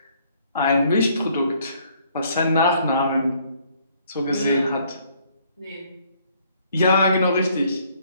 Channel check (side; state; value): both; inverted; correlation -0.64